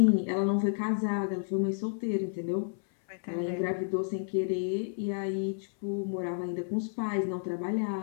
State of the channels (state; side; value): silent; right; 57 dB below the other